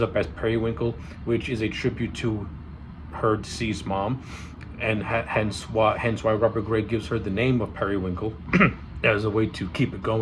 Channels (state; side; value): identical; both; correlation 1.00